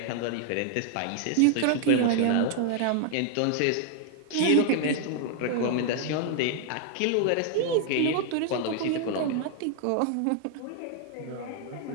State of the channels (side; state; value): both; different; correlation 0.00